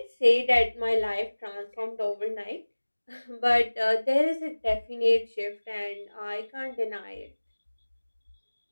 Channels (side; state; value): both; inverted; correlation -1.00